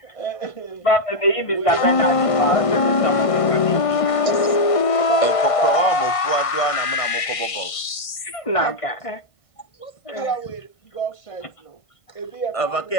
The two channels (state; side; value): late; right; 1.5 ms